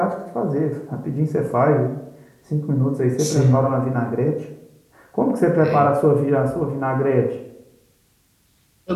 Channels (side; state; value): both; identical; correlation 1.00